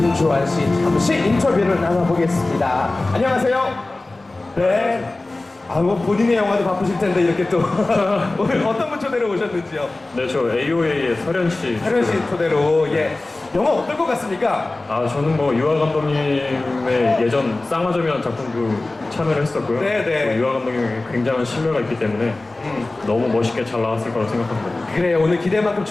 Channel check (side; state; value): right; quieter; 3.0 dB